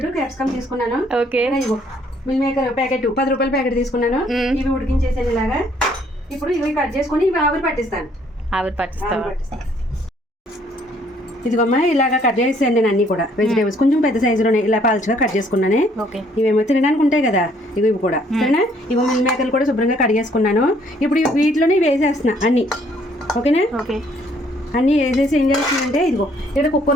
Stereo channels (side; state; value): both; normal; correlation 0.64